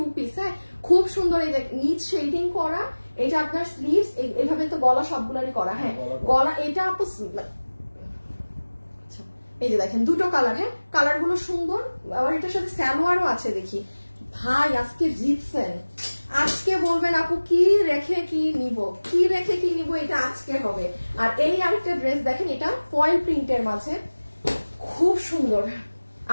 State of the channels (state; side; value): inverted; both; correlation -1.00